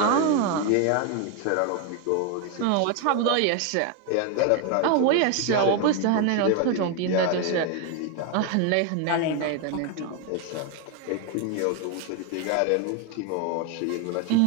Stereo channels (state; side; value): different; both; correlation 0.01